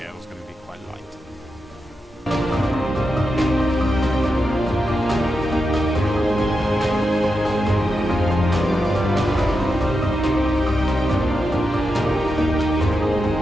is going to be quite light.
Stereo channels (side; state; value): both; normal; correlation 0.88